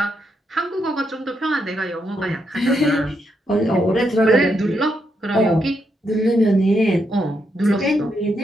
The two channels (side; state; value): both; normal; correlation 0.80